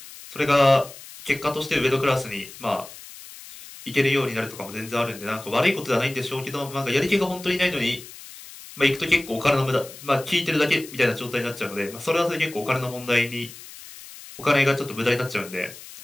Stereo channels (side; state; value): left; noise; hiss, 16 dB below the sound